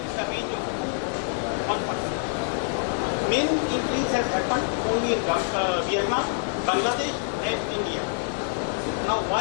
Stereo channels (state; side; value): silent; right; 60 dB below the other